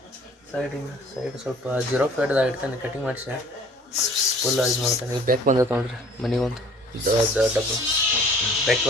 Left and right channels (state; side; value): normal; both; correlation 0.52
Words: ಸೈಡ್ ಸ್ವಲ್ಪ ಜೀರೋ ಫೇಡ್ದಾಗ ಇಡ್ತಾನೆ ಕಟಿಂಗ್ ಮಾಡಿಸಿ ಫುಲ್ ಇದು ಮಾಡ್ತಾನೆ. ಈಗ ಬ್ಯಾಕ್ ಬಂದೈತೆ ನೋಡ್ರಿ ಮನೆಗೊಂದು ಡಬ್ಬ ಬ್ಯಾಕ್